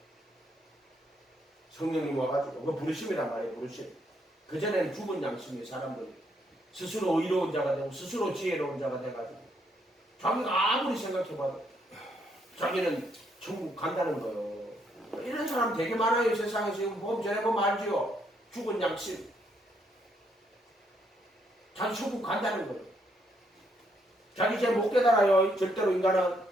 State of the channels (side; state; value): both; normal; correlation 0.73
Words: 성령님 와가지고 그거 부르심이란 말이에요. 부르심. 그전에는 죽은 양심이 사람들이 스스로 의로운 자가 되고 스스로 지혜로운 자가 돼가지고 자기가 아무리 생각해봐도 자기는 천국 간다는 거예요. 이런 사람 되게 많아요. 세상에 지금 보면 전에 보면 알지요. 죽은 양심. 자기 천국 간다는 거예요. 자기 제 못 깨달아요. 절대로 인간은